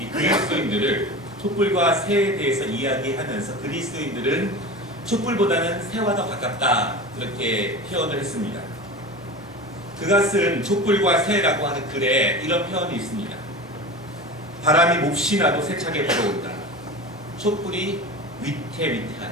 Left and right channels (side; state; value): both; normal; correlation 0.31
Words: 그리스도인들을 촛불과 새에 대해서 이야기하면서 그리스도인들은 촛불보다는 새와 더 가깝다, 그렇게 표현을 했습니다. 그가 쓴 촛불과 새라고 하는 글에 이런 표현이 있습니다. 바람이 몹시 나도 세차게 불어온다. 촛불이 위태위태하다.